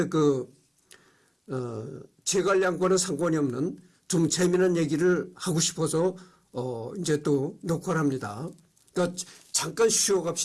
재관량과는 상관이 없는 좀 재미난 얘기를 하고 싶어서 이제 또 녹화를 합니다. 그러니까 잠깐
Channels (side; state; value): both; identical; correlation 1.00